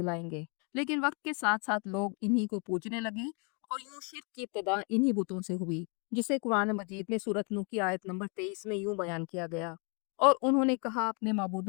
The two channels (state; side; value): quieter; right; 36.0 dB